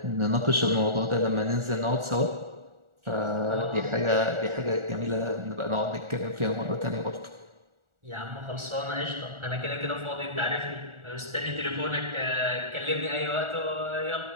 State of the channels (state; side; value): late; left; 1.4 ms